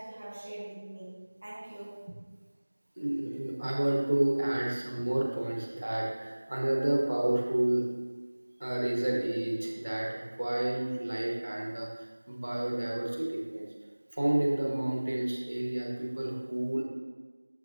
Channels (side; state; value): both; inverted; correlation -1.00